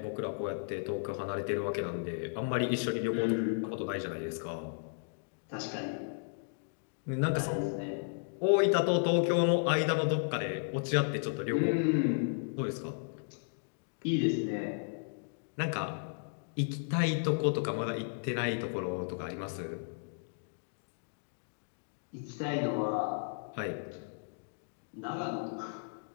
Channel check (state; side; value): silent; right; digital silence